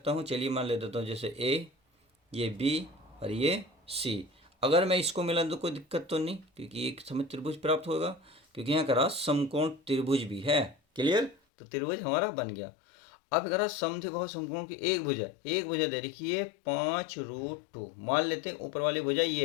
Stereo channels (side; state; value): right; drops out; at 11.4 s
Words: हूँ, चलिए मान ले देता हूँ, जैसे ए, ये बी और ये सी। अगर मैं इसको मिला तो कोई दिक्कत तो नहीं, क्योंकि एक समय त्रिभुज प्राप्त होगा, क्योंकि यहाँ करा समकोण त्रिभुज भी है। क्लियर, तो त्रिभुज हमारा बन गया। अब करा समद्विबाहु समकोण की एक भुजा दे रखी है 5√2, मान लेते हैं ऊपर वाली भुजा